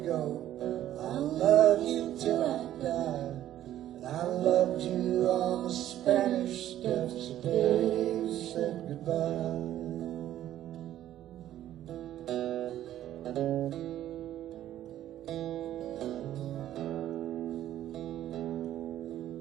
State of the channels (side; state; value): left; quieter; 12.5 dB